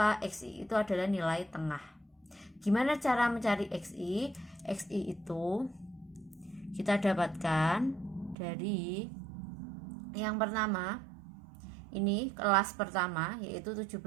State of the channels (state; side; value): drops out; left; at 8.3 s